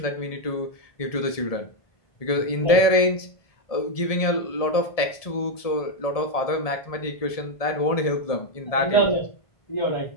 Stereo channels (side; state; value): right; late; 1.7 ms